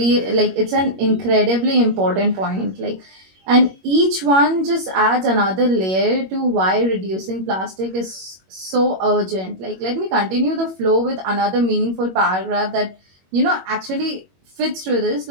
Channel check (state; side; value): late; left; 21 ms